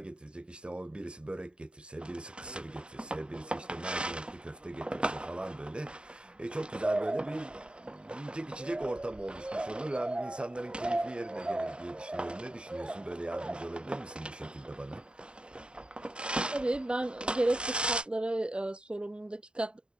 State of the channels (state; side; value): late; left; 0.052 ms